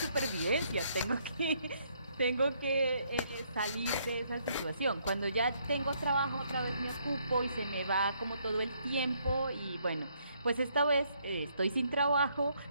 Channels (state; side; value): inverted; both; correlation -0.70